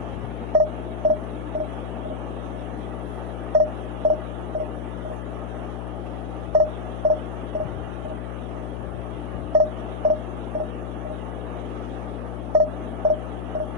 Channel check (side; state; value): left; noise; hum, 4 dB below the sound